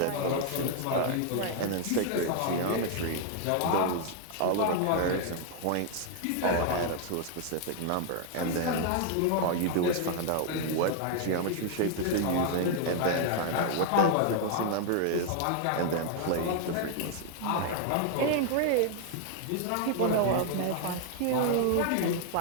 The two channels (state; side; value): different; both; correlation 0.00